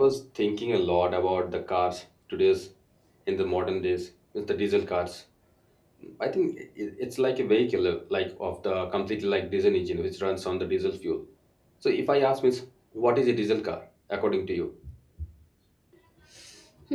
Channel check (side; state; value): both; identical; correlation 1.00